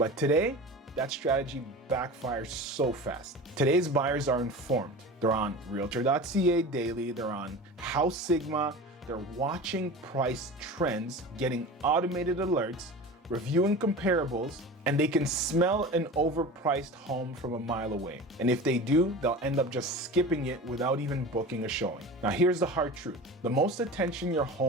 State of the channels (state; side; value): normal; both; correlation 0.34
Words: today, that strategy backfires so fast. Today's buyers are informed. They're on Realtor.ca daily, they're on House Sigma, they're watching price trends, getting automated alerts, reviewing comparables, and they can smell an overpriced home from a mile away. And if they do, they'll end up just skipping it without even booking a showing. Now here's the hard truth. The most attention your